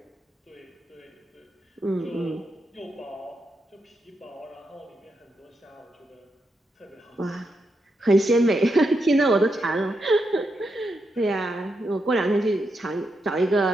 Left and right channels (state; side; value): normal; both; correlation 0.84